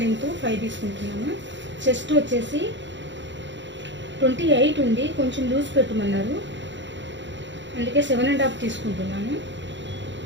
లెంత్ 5 తీసుకుంటున్నాను. చెస్ట్ వచ్చేసి 28 ఉంది, కొంచెం లూజ్ పెట్టమన్నారు, అందుకే 7.5 తీసుకుంటున్నాను.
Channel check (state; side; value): late; left; 0.53 ms